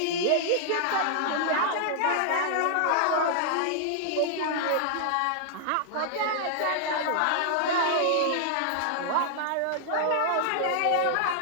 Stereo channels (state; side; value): different; both; correlation -0.01